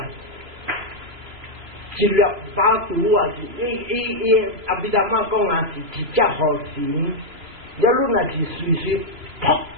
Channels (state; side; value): late; left; 3.0 ms